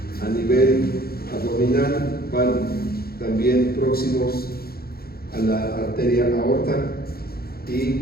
A nivel abdominal van también próximos a la arteria aorta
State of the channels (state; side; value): late; right; 0.44 ms